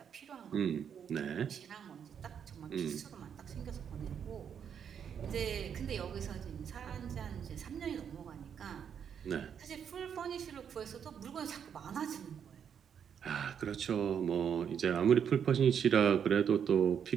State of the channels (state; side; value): quieter; left; 7.9 dB